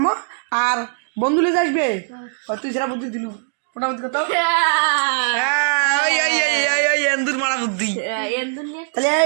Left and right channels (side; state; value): left; silent; digital silence